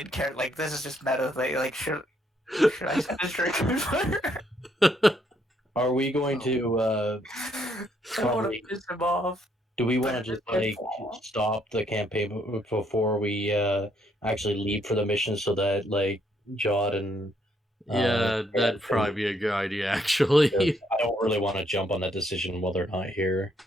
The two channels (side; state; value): both; normal; correlation 0.71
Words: character. Like, this is just meta thing. Like, should I set this drink on fire? Are we going to I want Probably. to piss him off. do we want to just like stop the campaign before we actually leave for the mission so that like Jod and Yeah, that'd probably be a good idea, actually. I don't really want to jump on that decision while they're not here.